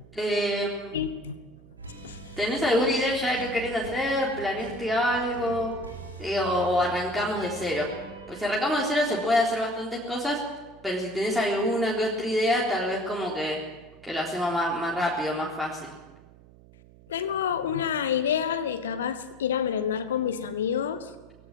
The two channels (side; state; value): right; noise; hum, 23 dB below the sound